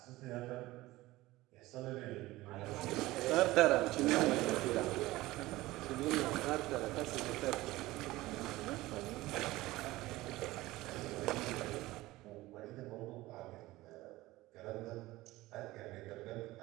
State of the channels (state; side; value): quieter; left; 18.3 dB